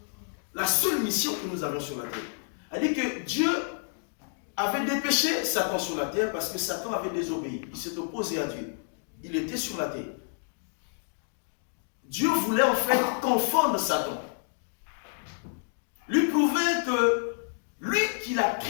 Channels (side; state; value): right; silent; digital silence